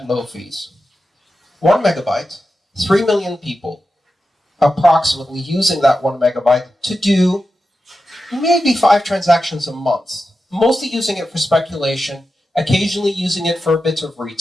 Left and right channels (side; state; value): both; normal; correlation 0.91